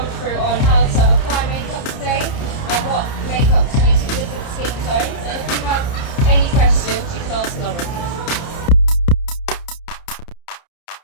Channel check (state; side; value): late; right; 30 ms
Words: through on how to apply makeup today and what makeup to use for different skin tones. And if you have any questions, you can ask Lauren.